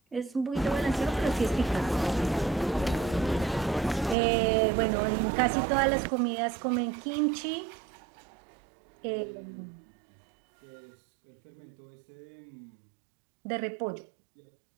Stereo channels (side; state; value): left; drops out; at 4.2 s